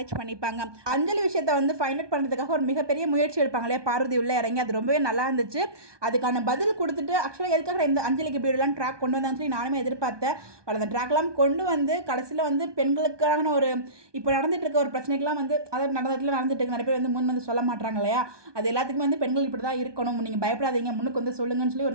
பண்ணிப்பாங்க. அஞ்சலி விஷயத்தை வந்து ஃபைண்ட் அவுட் பண்ணுறதுக்காக ஒரு மிகப்பெரிய முயற்சி எடுப்பாங்க இல்லையா, பார்வதி உள்ள இறங்கி. அது ரொம்பவே நல்லா இருந்துச்சு. அதுக்கான பதில் கொடுத்துட்டு ஆக்சுவலாக எதுக்காக இந்த அஞ்சலிக்கு இப்படி எல்லாம் ட்ராக் கொண்டு வந்தாங்கன்னு சொல்லி நானுமே எதிர்பார்த்தேன். பட் அந்த ட்ராக்லாம் கொண்டு வந்து கடைசியில் வந்து பெண்களுக்கான ஒரு இப்போ நடந்துட்டு இருக்க ஒரு பிரச்சனைக்கெல்லாம் வந்து அதாவது நடந்துட்டு இருக்கு, நிறைய பேர் வந்து முன் வந்து சொல்ல மாட்டாங்க இல்லையா, அது எல்லாத்துக்குமே வந்து பெண்கள் இப்படி தான் இருக்கணும், நீங்கள் பயப்படாதீங்க, முன்னுக்கு வந்து சொல்லுங்கன்னு சொல்லி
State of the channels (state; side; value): late; left; 1.2 ms